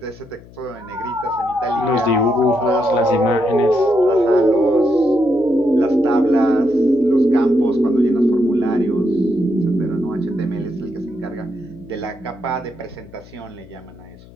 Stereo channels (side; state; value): left; noise; hum, 22 dB below the sound